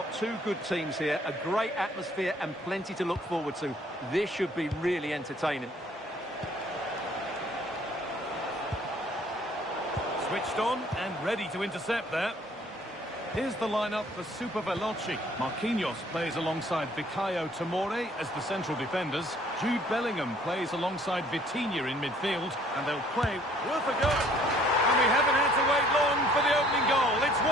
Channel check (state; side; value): normal; both; correlation 0.59